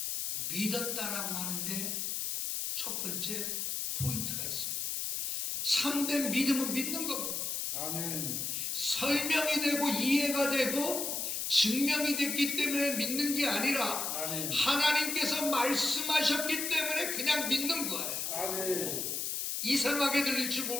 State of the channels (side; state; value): left; noise; hiss, 2 dB below the sound